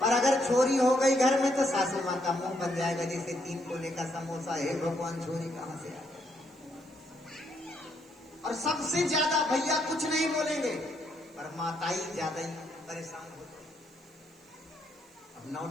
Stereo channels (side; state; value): right; noise; hiss, 30 dB below the sound